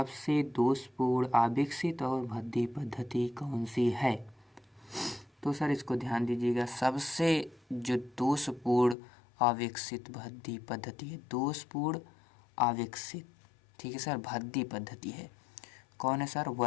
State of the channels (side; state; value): right; drops out; at 9.0 s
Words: दोषपूर्ण अविकसित और भद्दी पद्धति कौन सी है। तो सर इसको ध्यान दीजिएगा, सबसे जो दोषपूर्ण अविकसित भद्दी पद्धति है, दोषपूर्ण अविकसित, ठीक है सर, भद्दी पद्धति है, कौन है सर,